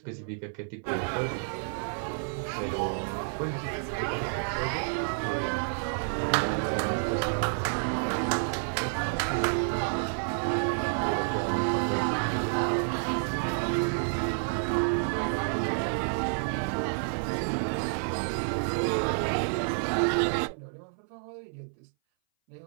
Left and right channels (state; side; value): silent; left; 58 dB below the other